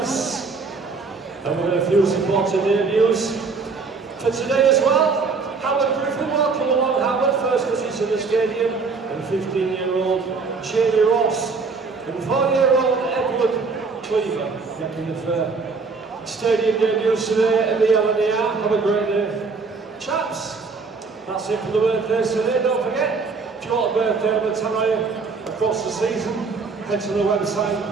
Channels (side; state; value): left; quieter; 4.5 dB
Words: And we've got a few supporting debuts for today as well. Howard Griffin, welcome along Howard, first visit to the stadium, and 15-year-old Jamie Ross, and 4-year-old Edward Cleaver, making the stadium debuts today at the LNER. Have a great day, chaps. That's it for the birthdays today. Don't forget, if you want a birthday on the Tannoy across the season, head to the website